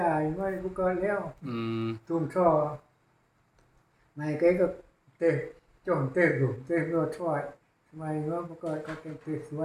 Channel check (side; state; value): both; identical; correlation 1.00